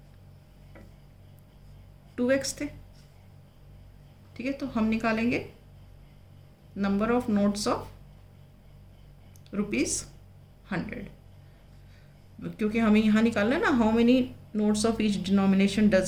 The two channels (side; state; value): both; identical; correlation 1.00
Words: 2x थे। ठीक है, तो हम निकालेंगे नंबर ऑफ नोट्स ऑफ ₹100, क्योंकि हमें यहाँ निकालना है ना, how many notes of each denomination